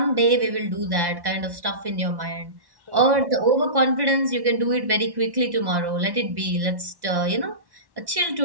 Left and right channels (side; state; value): left; late; 1.1 ms